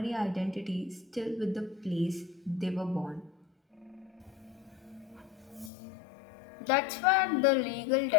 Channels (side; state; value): right; drops out; at 5.7 s